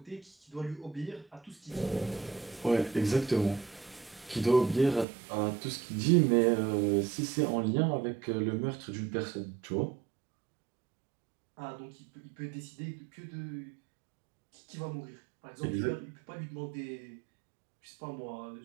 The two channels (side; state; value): left; drops out; at 5.1 s